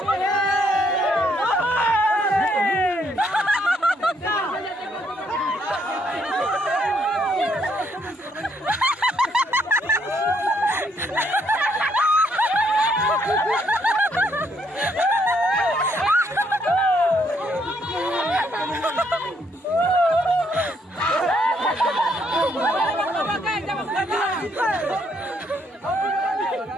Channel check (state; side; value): normal; both; correlation 0.71